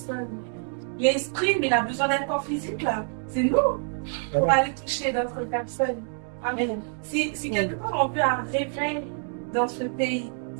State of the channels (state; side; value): silent; left; 60 dB below the other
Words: L'esprit, mais il a besoin d'un corps physique, là. C'est nous pour aller toucher d'autres personnes. Amen. Si quelque part on veut un réveil dans ce pays,